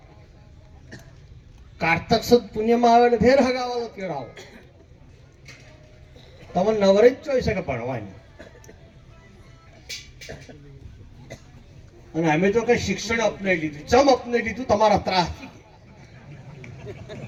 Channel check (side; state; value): both; identical; correlation 1.00